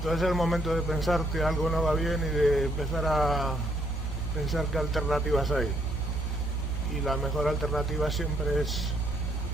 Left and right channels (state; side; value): normal; both; correlation 0.71